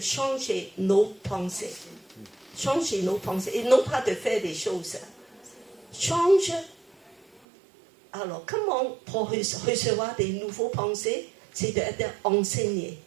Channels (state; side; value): drops out; left; at 7.4 s